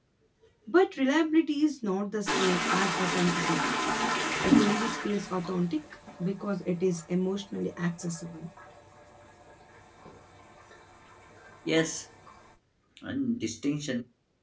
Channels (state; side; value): identical; both; correlation 1.00